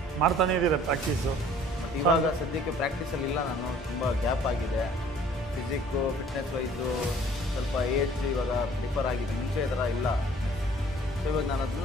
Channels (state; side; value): normal; both; correlation 0.54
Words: ಮಾಡ್ತಾನೇ ಇದ್ದೀರಾ ಪ್ರಾಕ್ಟೀಸು ಬಟ್ ಇವಾಗ ಸದ್ಯಕ್ಕೆ ಪ್ರಾಕ್ಟೀಸಲ್ಲಿ ಇಲ್ಲ ನಾನು ತುಂಬ ಗ್ಯಾಪ್ ಆಗಿದೆ ಫಿಸಿಕ್ಕು ಫಿಟ್ನೆಸ್ ವೈಸು ಸ್ವಲ್ಪ ಏಜ್ ಇವಾಗ ಪ್ರಿಫರ್ ಆಗಿದೆ ಮುಂಚೆ ಈ ಥರ ಇಲ್ಲ ಸೊ ಇವಾಗ ನಾನು